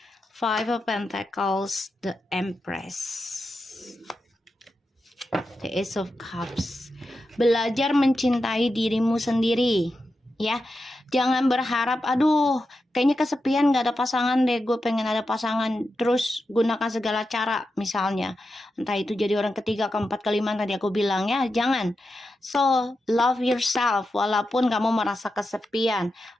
Five of Pentacles, the Empress, the Ace of Cups. Belajar mencintai dirimu sendiri, ya. Jangan berharap, aduh, kayaknya kesepian gak ada pasangan deh, gue pengen ada pasangan. Terus gunakan segala cara, misalnya. Entah itu jadi orang ketiga, keempat, kelima, tadi aku bilang ya, jangan. So, love yourself, walaupun kamu merasa kesepian,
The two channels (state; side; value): normal; both; correlation 0.89